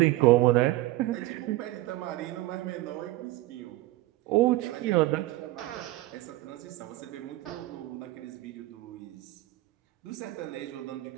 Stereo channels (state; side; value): quieter; left; 17.4 dB